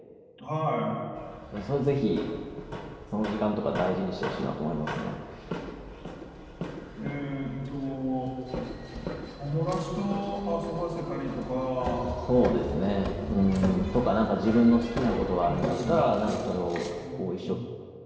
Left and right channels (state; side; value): identical; both; correlation 1.00